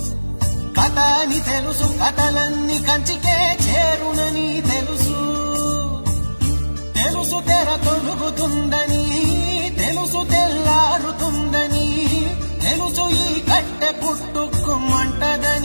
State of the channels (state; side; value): inverted; both; correlation -1.00